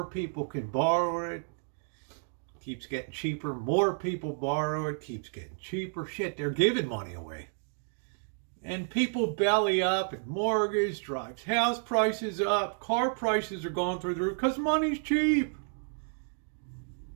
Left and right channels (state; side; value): silent; left; digital silence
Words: people can borrow it. Keeps getting cheaper, more people borrow it, keeps getting cheaper. Shit, they're giving money away. And people belly up, and mortgage drives house prices up, car prices are going through the roof because money's cheap.